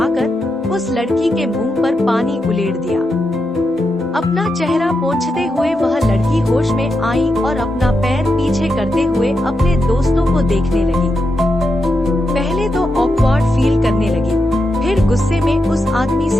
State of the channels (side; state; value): both; normal; correlation 0.86